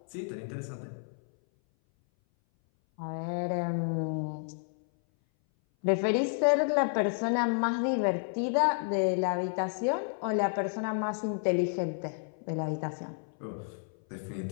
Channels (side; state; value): right; silent; 57 dB below the other